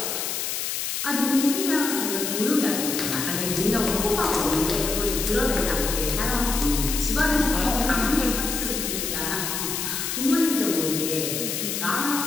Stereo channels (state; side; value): noise; left; hiss, 2 dB below the sound